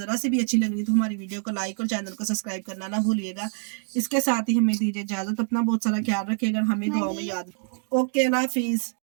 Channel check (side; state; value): left; silent; 56 dB below the other